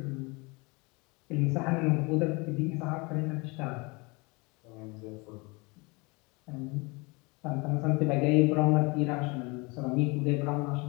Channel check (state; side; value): quieter; right; 27.5 dB